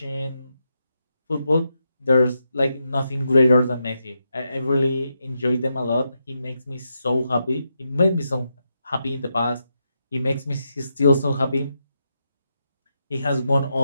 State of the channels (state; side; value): inverted; both; correlation -0.84